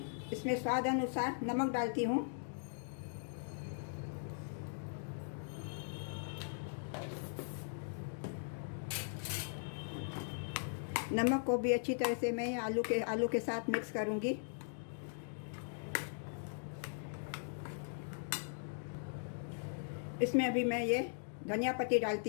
इसमें स्वाद अनुसार नमक डालती हूँ। नमक को भी अच्छी तरह से मैं आलू के साथ मिक्स करूँगी। इसमें अभी मैं ये धनिया पत्ती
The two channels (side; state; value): right; silent; digital silence